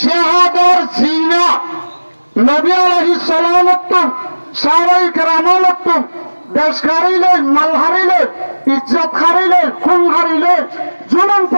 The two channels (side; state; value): both; inverted; correlation -1.00